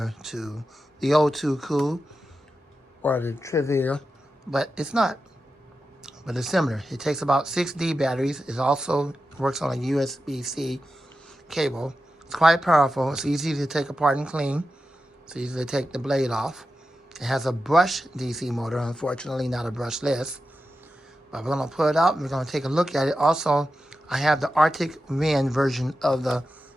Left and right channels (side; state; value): both; normal; correlation 0.91